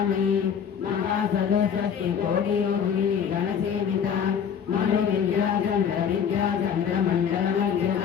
महासदुषष्टिकोटियोगिनी गणसेविता मनोविद्या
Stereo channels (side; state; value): right; quieter; 7.6 dB